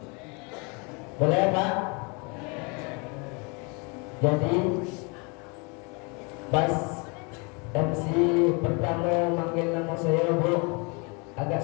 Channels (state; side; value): quieter; right; 31.5 dB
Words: Boleh, Pak? Jadi pas MC pertama manggil nama saya, Bu, agak